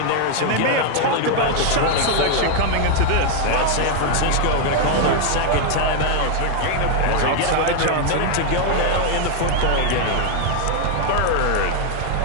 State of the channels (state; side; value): different; both; correlation 0.01